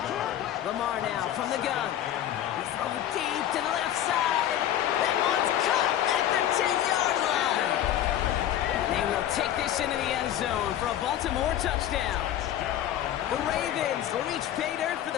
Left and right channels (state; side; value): quieter; right; 11.5 dB